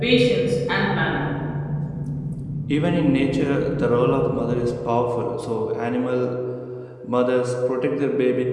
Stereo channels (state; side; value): identical; both; correlation 1.00